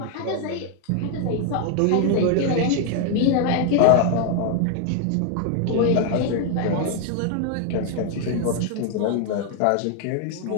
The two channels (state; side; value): different; both; correlation 0.00